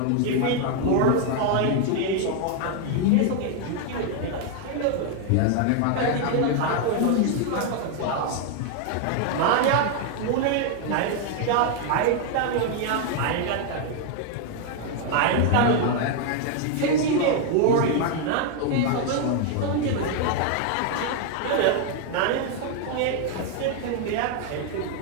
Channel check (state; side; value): different; both; correlation 0.00